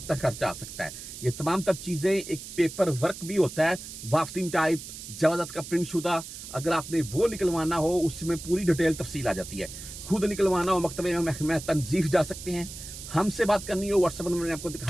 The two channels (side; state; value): right; noise; hiss, 12 dB below the sound